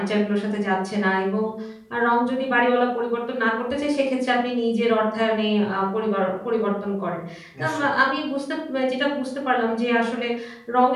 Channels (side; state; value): both; identical; correlation 1.00